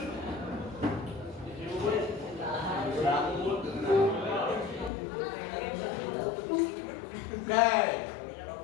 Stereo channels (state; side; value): drops out; right; at 4.9 s